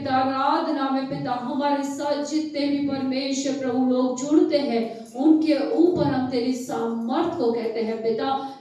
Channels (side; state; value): both; identical; correlation 1.00